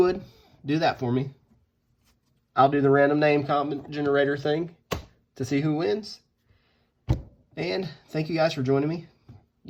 do that for me. I'll do the random name comment generator thing to see who wins. And thank you guys for joining me.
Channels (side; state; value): both; identical; correlation 1.00